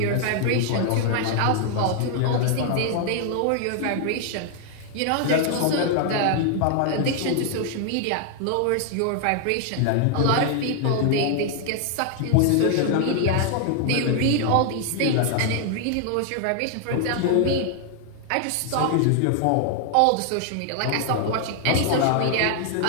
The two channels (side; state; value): both; different; correlation 0.00